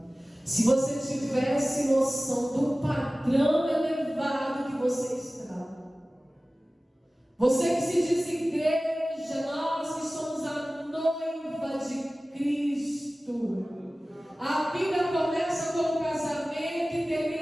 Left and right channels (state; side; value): normal; both; correlation 0.97